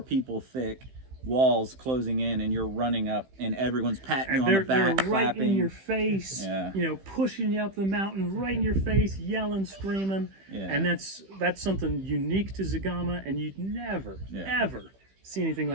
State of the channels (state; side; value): late; left; 15 ms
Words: people thick. Walls closing in, and you're running up, and everyone's patting you on the back, they're right clapping in your face, pushing you up the mountain, right in your face, yelling, screaming, and that's something unique to Zagama, and you'd never, ever see anything